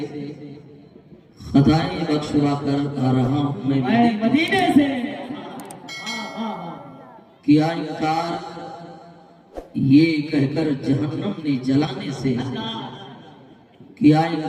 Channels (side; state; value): both; identical; correlation 1.00